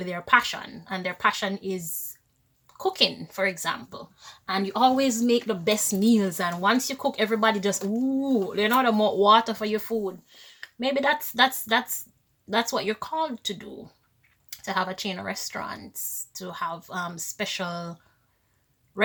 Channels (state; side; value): identical; both; correlation 1.00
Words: their passion, and their passion is cooking, for example, and you always make the best meals, and once you cook, everybody just the more water for your food. Maybe that's what you're called to do, to have a chain of restaurants, to have special